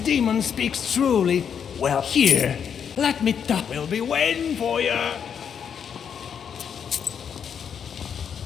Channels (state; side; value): quieter; right; 7.6 dB